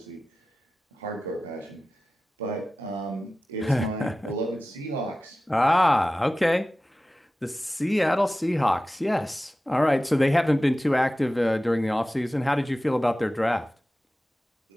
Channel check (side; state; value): both; normal; correlation 0.95